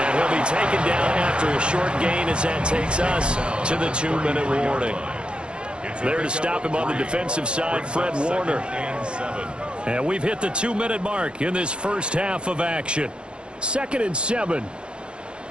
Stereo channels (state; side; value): late; left; 0.055 ms